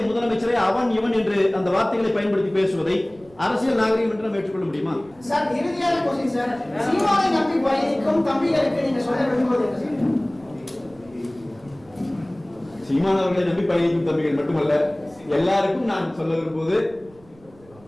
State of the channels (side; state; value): right; noise; rumble, 27 dB below the sound